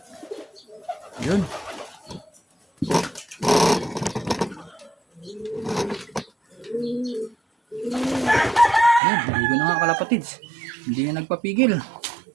Ayun. Ayan, maligo na nga kalapatids. Hindi na nagpapigil.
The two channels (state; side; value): drops out; left; at 9.0 s